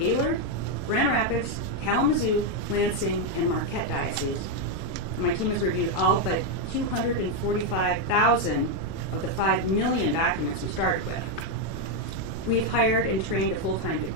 Grand Rapids, Kalamazoo, Lansing, and Marquette dioceses. My team has reviewed all but 245,000 of the 5 million documents we started with. We've hired and trained a full-time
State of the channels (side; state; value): right; late; 20 ms